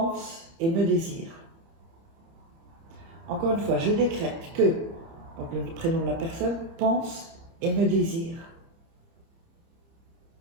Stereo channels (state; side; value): late; left; 30 ms